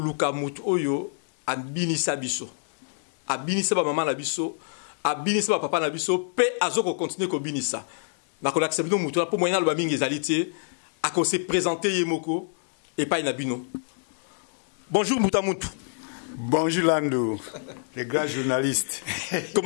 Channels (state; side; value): silent; right; digital silence